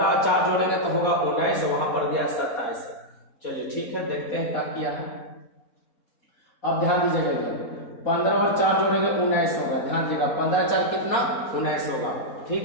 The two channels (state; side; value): late; right; 4.2 ms